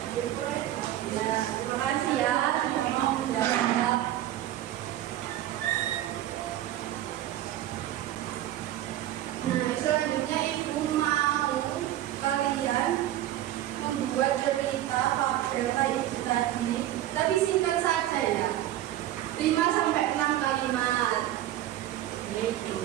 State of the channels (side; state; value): left; quieter; 13.4 dB